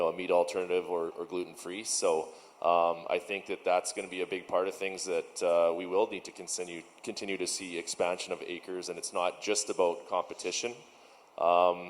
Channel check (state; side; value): identical; both; correlation 1.00